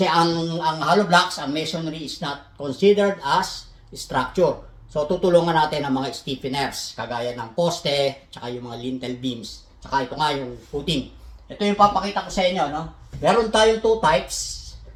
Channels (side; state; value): both; identical; correlation 1.00